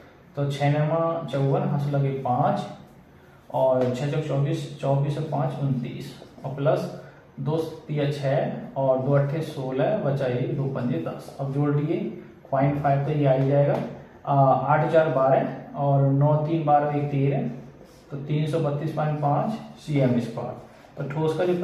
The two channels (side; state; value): both; identical; correlation 1.00